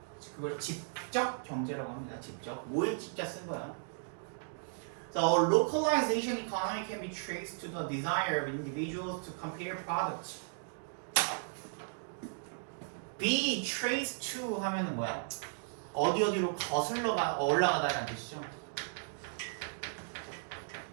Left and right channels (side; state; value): left; silent; digital silence